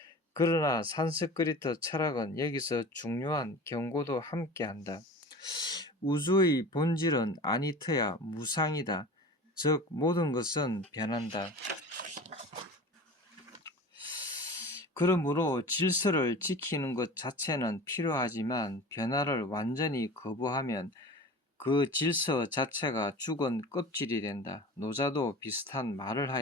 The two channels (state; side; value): normal; both; correlation 0.37